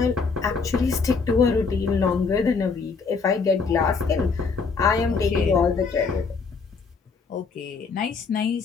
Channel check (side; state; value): right; quieter; 4.9 dB